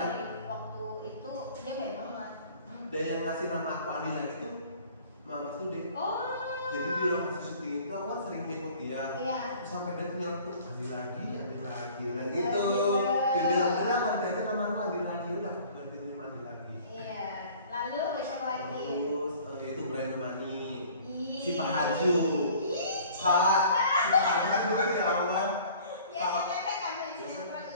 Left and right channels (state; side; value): inverted; both; correlation -0.50